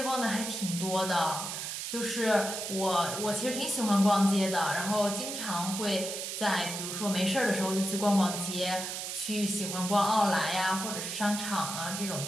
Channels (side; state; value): right; noise; hiss, 5 dB below the sound